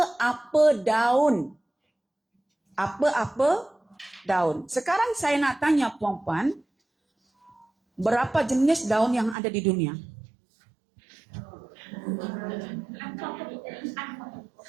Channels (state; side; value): drops out; left; at 9.3 s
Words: daun. Apa-apa daun. Sekarang saya nak tanya puan-puan, berapa jenis daun yang ada di dunia?